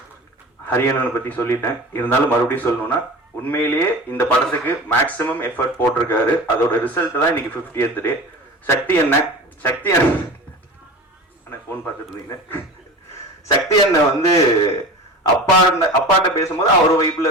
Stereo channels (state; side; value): normal; both; correlation 0.34